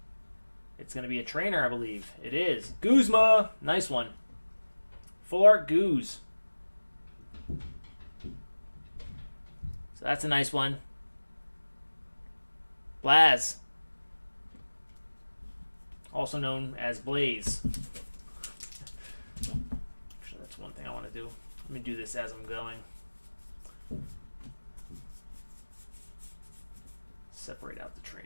It's going to be a trainer, I believe. It is. Guzma. Nice one. Full Art Goose. So that's a nice one. Blaz. Also known as Blaze. Actually, that's one thing I want to do. Let me do this as I'm going. Separate out the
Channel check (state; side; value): inverted; both; correlation -1.00